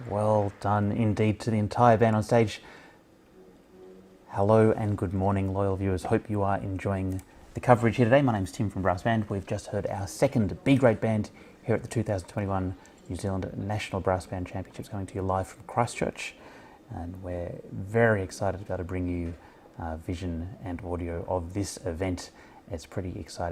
Well done indeed to the entire band on stage. Hello and good morning, loyal viewers. Hope you are enjoying the coverage here today. My name's Tim from Brass Band. We've just heard our second B-grade band here at the 2021 New Zealand National Brass Band Championships, coming to you live from Christchurch. And we're very excited to be able to bring you vision and audio of this event. It's pretty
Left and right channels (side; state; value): both; identical; correlation 1.00